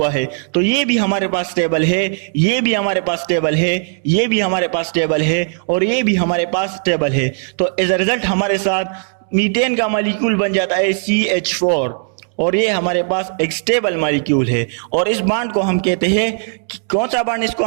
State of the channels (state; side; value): silent; left; digital silence